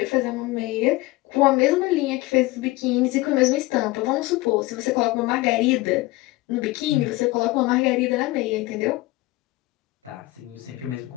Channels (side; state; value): right; quieter; 20.1 dB